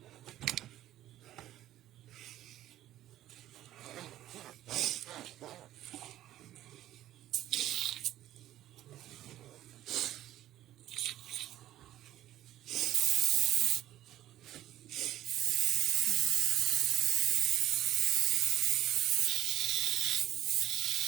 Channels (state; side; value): quieter; left; 13.5 dB